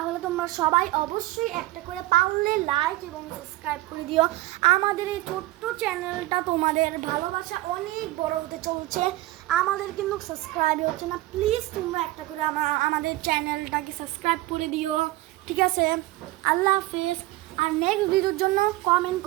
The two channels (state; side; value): quieter; left; 17.8 dB